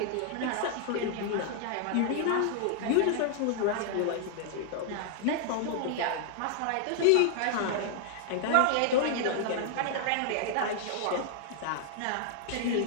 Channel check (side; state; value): both; different; correlation -0.01